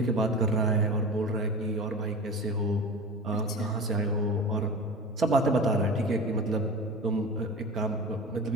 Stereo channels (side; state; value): both; normal; correlation 0.32